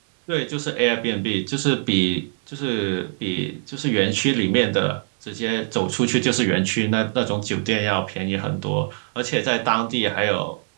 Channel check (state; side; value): silent; left; digital silence